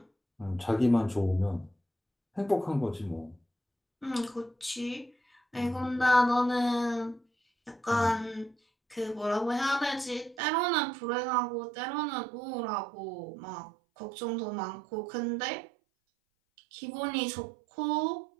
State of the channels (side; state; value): left; drops out; at 10.4 s